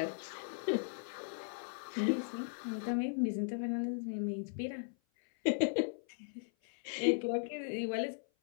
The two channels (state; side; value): silent; right; 53 dB below the other